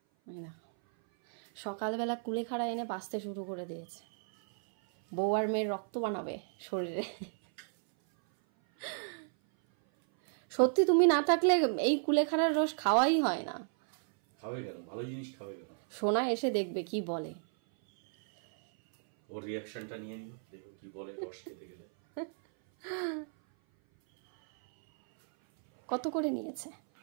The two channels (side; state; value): left; silent; 56 dB below the other